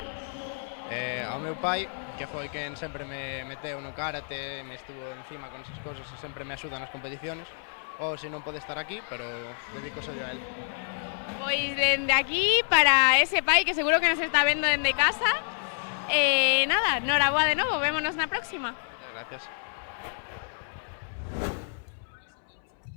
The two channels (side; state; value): right; silent; 59 dB below the other